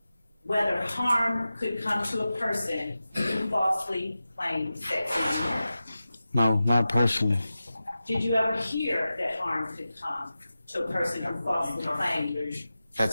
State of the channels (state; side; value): inverted; both; correlation -0.94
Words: whether harm could come to a person who falsely claimed sex, money, murder? No, not personally. Did you ever hear that harm could come to a person who falsely claimed?